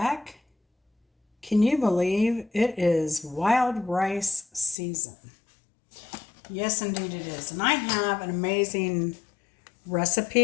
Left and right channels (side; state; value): right; drops out; at 4.8 s